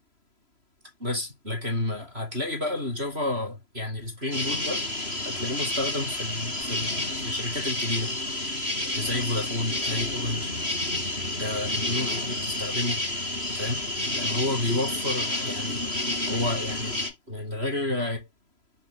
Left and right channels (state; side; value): late; left; 3.0 ms